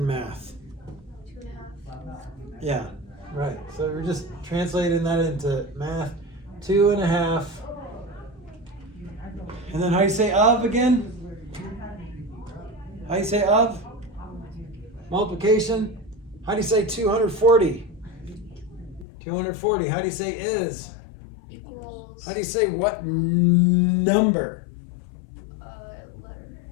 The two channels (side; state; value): right; drops out; at 19.1 s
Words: math? 2.5. Yeah, right. So we're just translating that into math. 2 and a half. And then how do you say of again? How do you say of? Multiplication. How do you say 240? 240. How do you say is? Equals. How do you say what number? Letter.